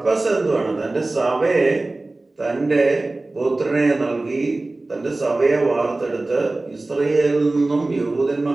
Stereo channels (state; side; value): quieter; left; 3.0 dB